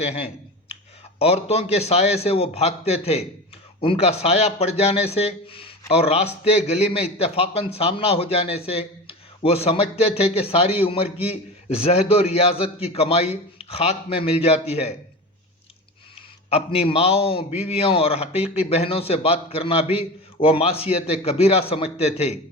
ہیں۔ عورتوں کے سائے سے وہ بھاگتے تھے، ان کا سایہ پڑ جانے سے اور راستے گلی میں اتفاقاً سامنا ہو جانے سے وہ سمجھتے تھے کہ ساری عمر کی زہد و ریاضت کی کمائی خاک میں مل جاتی ہے۔ اپنی ماؤں، بیویوں اور حقیقی بہنوں سے بات کرنا بھی وہ معصیت کبیرہ سمجھتے تھے،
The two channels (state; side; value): normal; both; correlation 0.28